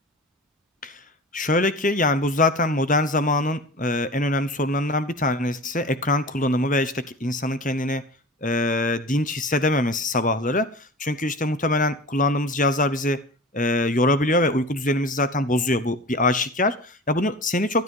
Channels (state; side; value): normal; both; correlation 0.36